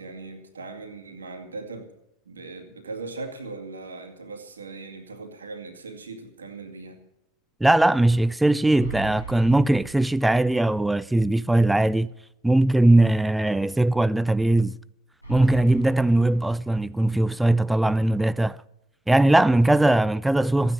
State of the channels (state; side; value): normal; both; correlation 0.97